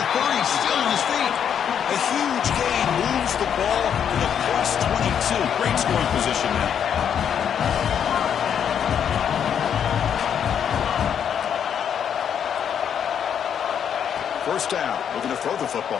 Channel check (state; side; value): quieter; right; 8.4 dB